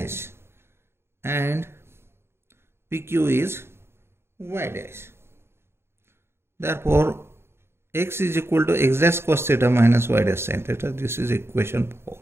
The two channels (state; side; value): late; left; 0.12 ms